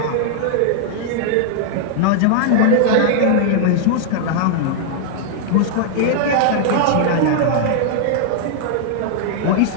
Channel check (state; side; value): different; both; correlation -0.01